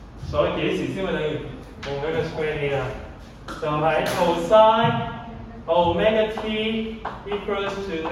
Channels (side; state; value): both; identical; correlation 1.00